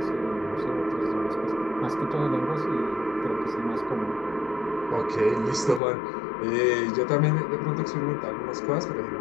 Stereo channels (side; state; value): right; drops out; at 5.8 s